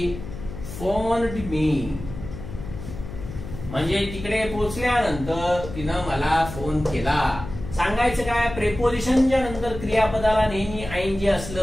phoned me. म्हणजे तिकडे पोहोचल्यानंतर तिनं मला फोन केला. सांगायचं काय, प्रेपोजिशनच्या नंतर क्रियापदाला नेहमी आयएनजी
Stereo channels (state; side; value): noise; left; hum, 10 dB below the sound